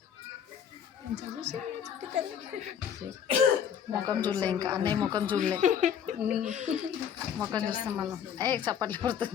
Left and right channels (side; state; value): right; quieter; 8.4 dB